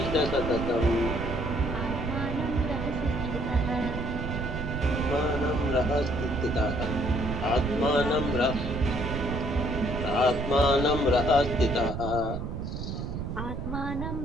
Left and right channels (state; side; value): noise; right; rumble, 5 dB below the sound